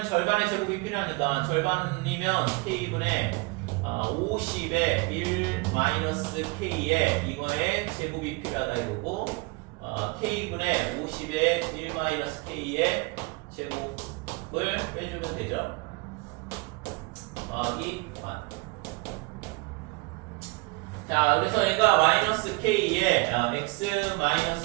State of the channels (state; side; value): quieter; left; 26.5 dB